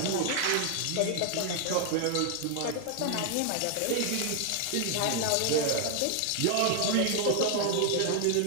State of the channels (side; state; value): both; different; correlation 0.00